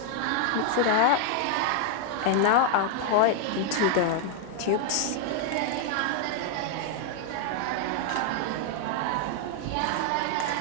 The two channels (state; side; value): different; both; correlation 0.00